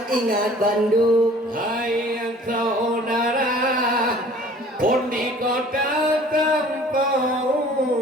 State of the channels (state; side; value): normal; both; correlation 0.50